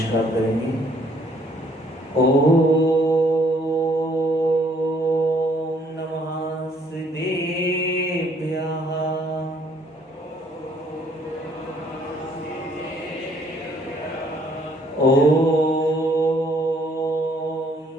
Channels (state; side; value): normal; both; correlation 0.63